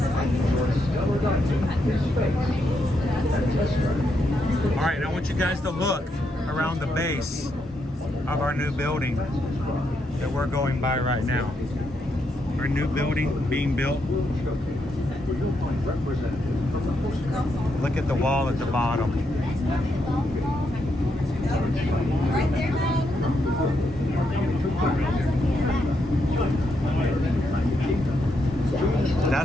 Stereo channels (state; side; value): normal; both; correlation 0.80